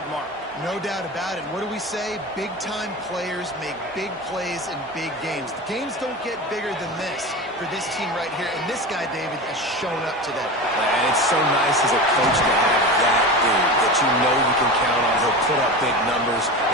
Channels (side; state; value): both; normal; correlation 0.27